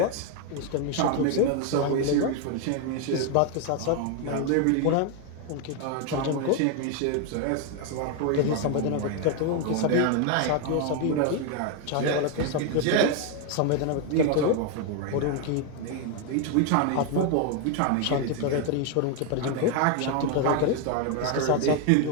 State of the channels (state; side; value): different; both; correlation 0.01